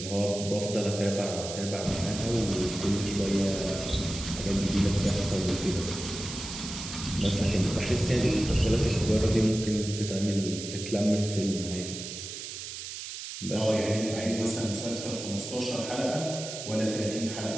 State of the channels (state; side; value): noise; right; hiss, 8 dB below the sound